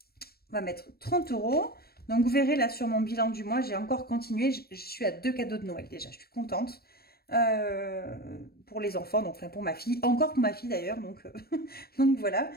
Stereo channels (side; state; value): right; late; 0.45 ms